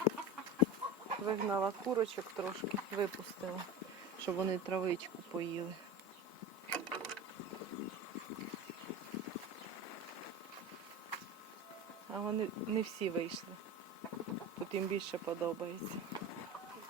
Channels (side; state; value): both; normal; correlation 0.28